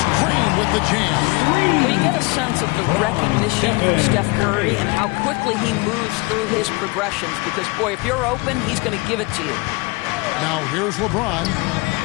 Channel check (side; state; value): right; quieter; 25.7 dB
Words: Green with the jam. Well, you get a sense of the recognition from Steph Curry and how quickly he moves through his progressions. Because, boy, if you're open, he's going to give it to you. Now here's LeBron.